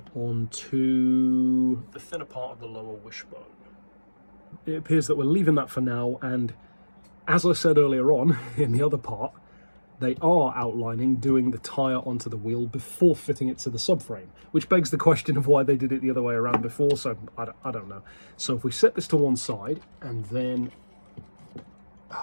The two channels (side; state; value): both; inverted; correlation -1.00